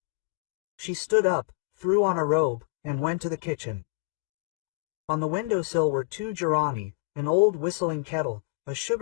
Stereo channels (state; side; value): quieter; right; 27.7 dB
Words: She stood up, threw on a robe, and went to the kitchen. On the windowsill were 2 gerani, an old whistling kettle, a